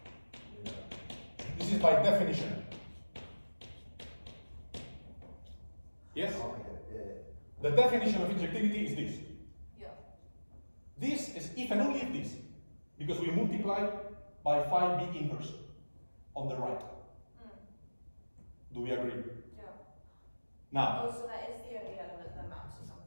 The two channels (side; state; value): both; inverted; correlation -1.00